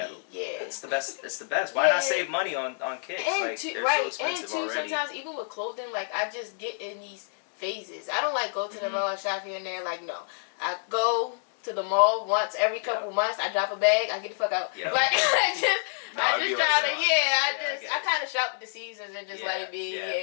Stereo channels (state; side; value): silent; right; 59 dB below the other